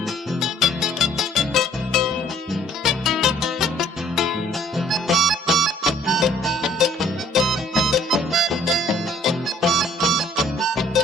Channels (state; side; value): normal; both; correlation 0.59